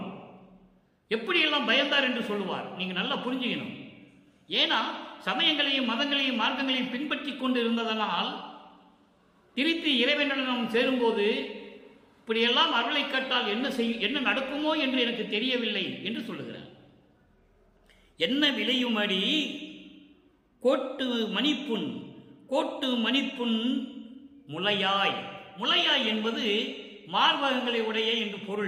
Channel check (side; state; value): both; identical; correlation 1.00